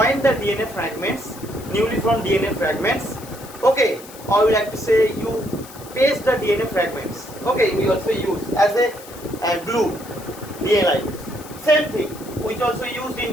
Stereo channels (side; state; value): left; noise; hiss, 18 dB below the sound